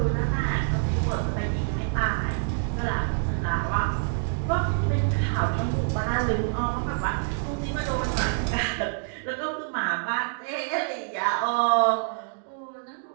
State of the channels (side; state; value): left; silent; digital silence